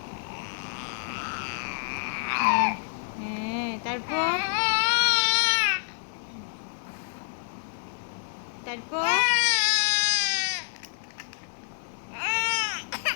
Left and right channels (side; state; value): right; silent; 59 dB below the other